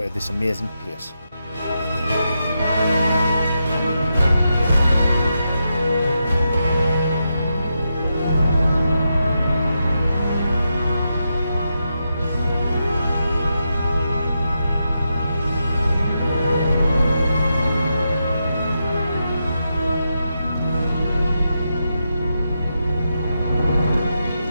of this amazing place.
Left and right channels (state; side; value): inverted; both; correlation -0.85